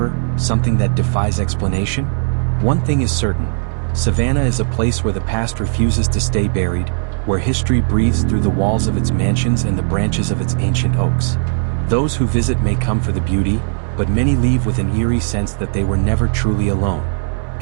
something that defies explanation? One thing is certain, Savannah is a place where the past refuses to stay buried, where history breathes through the walls of its mansions and the branches of its ancient oaks. Those who visit may come for the beauty, but many leave with an eerie sense that they were never truly alone.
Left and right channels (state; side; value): silent; left; 68 dB below the other